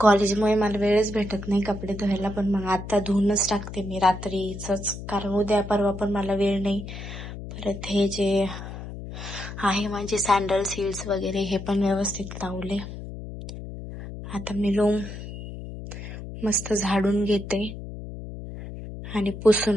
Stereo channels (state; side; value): noise; left; hum, 10 dB below the sound